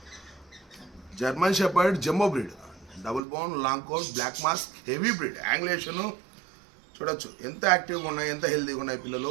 German shepherd jumbo breed double bone long coat black mask heavy breed angulation చూడొచ్చు ఎంత యాక్టివ్గా ఉన్నాయి ఎంత హెల్తీగా ఉన్నాయి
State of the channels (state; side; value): drops out; left; at 3.2 s